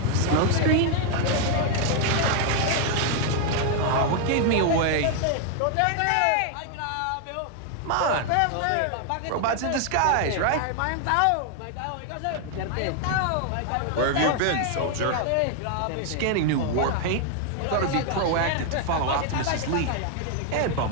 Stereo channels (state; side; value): different; both; correlation 0.00